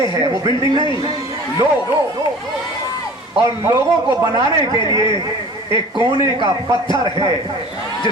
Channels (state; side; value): normal; both; correlation 0.43